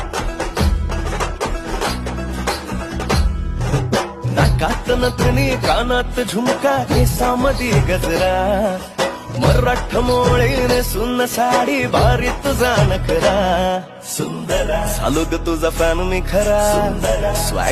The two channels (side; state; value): both; identical; correlation 1.00